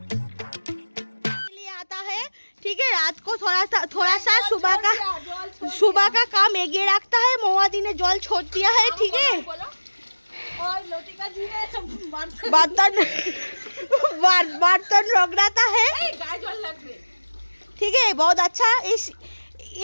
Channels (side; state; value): both; inverted; correlation -1.00